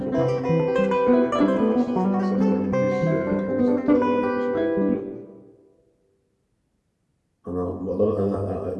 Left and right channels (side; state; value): both; identical; correlation 1.00